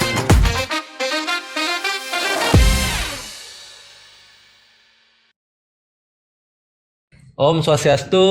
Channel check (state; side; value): identical; both; correlation 1.00